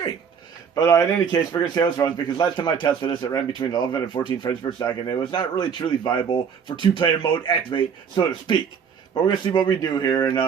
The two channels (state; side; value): quieter; left; 6.9 dB